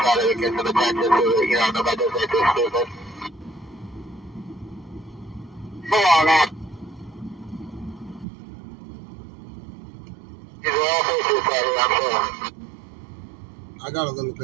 I got a little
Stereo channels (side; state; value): left; drops out; at 8.2 s